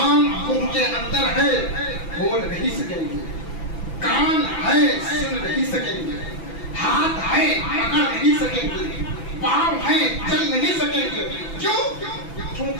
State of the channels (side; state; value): right; late; 6.0 ms